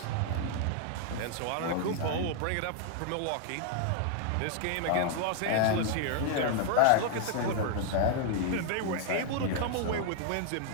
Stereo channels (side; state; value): both; different; correlation 0.00